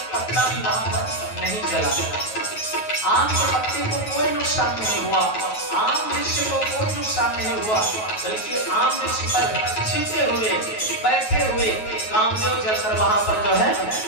पत्ता भी वहां पर नहीं जला। आम के पत्ते को कोई नुकसान नहीं हुआ, आम वृक्ष को कोई नुकसान नहीं हुआ, बल्कि आम वृक्ष पर छिपे हुए बैठे हुए कामदेव जलकर वहां पर जो है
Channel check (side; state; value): right; late; 9.3 ms